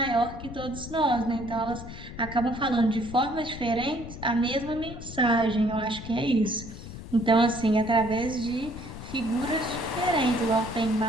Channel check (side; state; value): left; noise; rumble, 12 dB below the sound